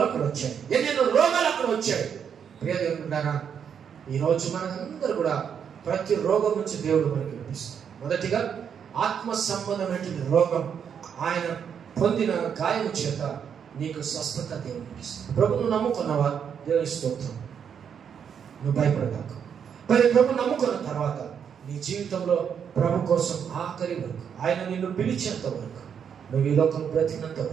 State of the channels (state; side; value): quieter; left; 7.7 dB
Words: అక్కడ వచ్చాయి, ఎన్నెన్నో రోగాలు అక్కడ వచ్చాయి. ప్రియ దేవుడున్నారా, ఈరోజు మనందరూ కూడా ప్రతి రోగం నుంచి దేవుడు మనకి విడిపిస్తాడు. మొదటిగా ఆత్మ సంబంధమైన రోగం ఆయన పొందిన గాయం చేత నీకు స్వస్థత దేవునికి ఇస్తాడు. ప్రభును నమ్ముకున్నావా? దేవుని స్తోత్రం. నువ్వు భయపడతావు. మరి ప్రభు నమ్ముకున్న తర్వాత నీ జీవితంలో ప్రభు కోసం ఆఖరి వరకు, ఆయన నిన్ను పిలిచేంత వరకు, నువ్వు ఈ లోకం బ్రతికినంత